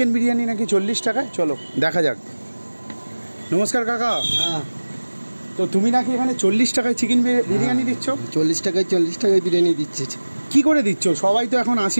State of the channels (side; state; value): both; inverted; correlation -1.00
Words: বিরিয়ানি নাকি 40 টাকায়? চলো দেখা যাক। নমস্কার কাকা। হ্যাঁ, তো তুমি নাকি এখানে 40 টাকায় চিকেন বিরিয়ানি দিচ্ছ? 40 টাকায় বিরিয়ানি দিচ্ছে। কি করে দিচ্ছ? সবাই তো এখন